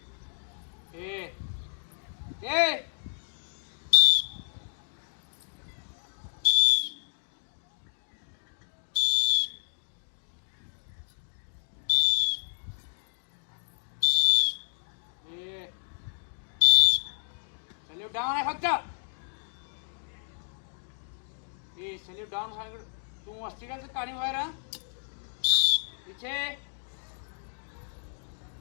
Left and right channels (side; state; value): right; silent; digital silence